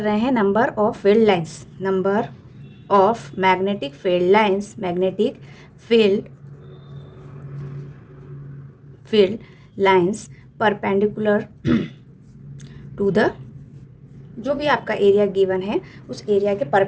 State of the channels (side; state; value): both; identical; correlation 1.00